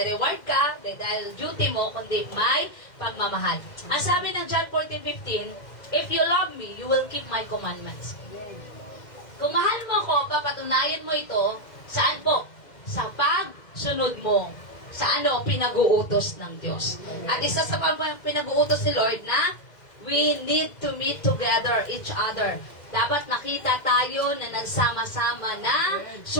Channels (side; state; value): right; late; 2.1 ms